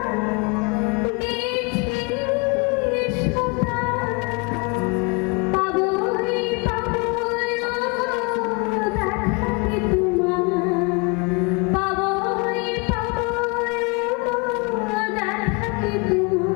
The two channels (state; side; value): quieter; right; 30.5 dB